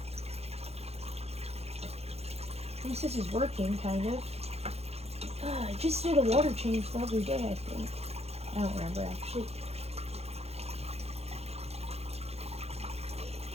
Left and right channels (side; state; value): left; late; 0.30 ms